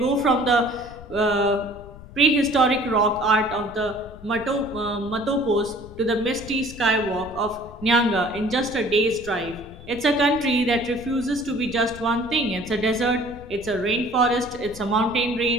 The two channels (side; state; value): left; noise; rumble, 16 dB below the sound